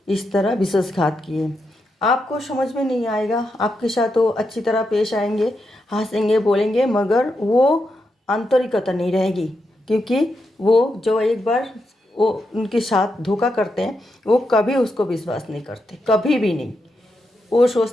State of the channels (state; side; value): normal; both; correlation 0.84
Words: इस तरह विश्वासघात किए। आपको समझ में नहीं आएगा, आपके साथ वो अच्छी तरह पेश आएंगे, हंसेंगे, बोलेंगे, मगर वो आंतरिकता नहीं रहेगी, क्योंकि वो जो एक बार वो उनके साथ धोखा करते हैं वो कभी उसको विश्वास नहीं करते, कभी भी नहीं। वो